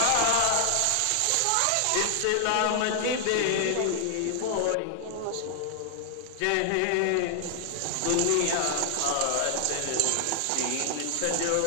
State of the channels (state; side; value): different; both; correlation 0.00